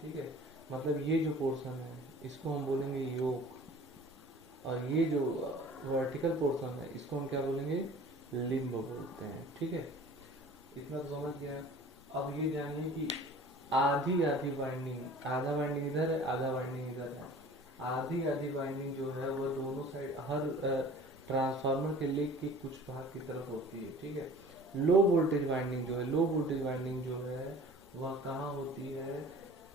ठीक है, मतलब ये जो पोर्शन है इसको हम बोलेंगे योक, और ये जो वर्टिकल पोर्शन है इसको हम क्या बोलेंगे? लिम्ब बोलते हैं। ठीक है, इतना तो समझ गया। अब ये जानिए कि आधी आधी वाइंडिंग, आधा वाइंडिंग इधर है, आधा वाइंडिंग इधर है। आधी आधी वाइंडिंग जो है वह दोनों साइड, हर ट्रांसफार्मर के लेग के कुछ भाग की तरफ होती है। ठीक है, लो वोल्टेज वाइंडिंग जो है, लो वोल्टेज वाइंडिंग जो है वह कहाँ होती है?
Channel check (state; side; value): normal; both; correlation 0.45